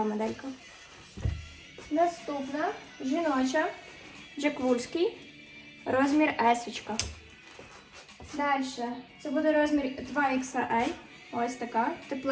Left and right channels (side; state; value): both; identical; correlation 1.00